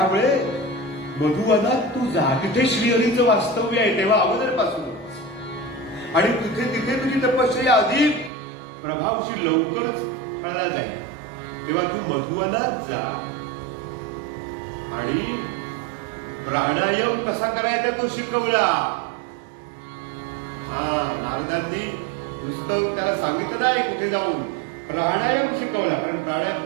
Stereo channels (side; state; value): left; drops out; at 8.3 s